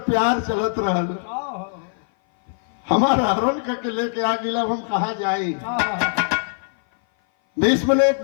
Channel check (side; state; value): right; silent; 57 dB below the other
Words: प्यार चलत रहल। हमारा हरण करके लेके आ गिला, हम कहा जाए। भीष्म ने एक